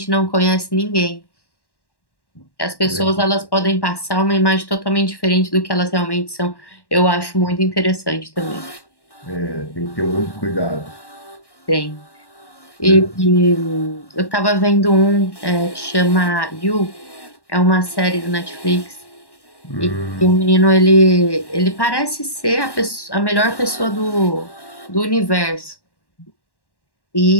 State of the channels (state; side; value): late; right; 1.1 ms